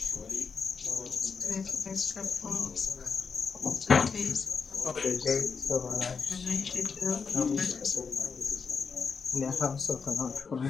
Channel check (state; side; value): quieter; right; 5.5 dB